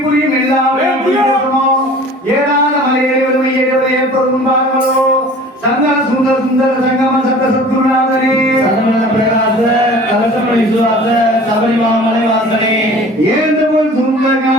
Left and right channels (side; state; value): both; normal; correlation 0.45